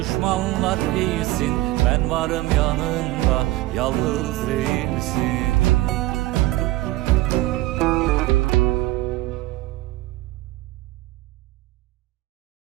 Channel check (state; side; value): quieter; left; 17.9 dB